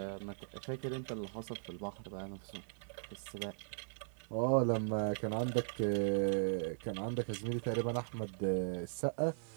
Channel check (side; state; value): left; silent; 52 dB below the other